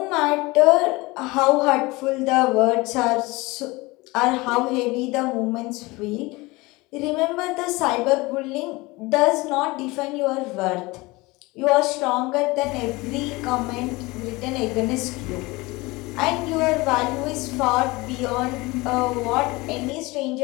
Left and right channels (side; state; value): right; quieter; 22.8 dB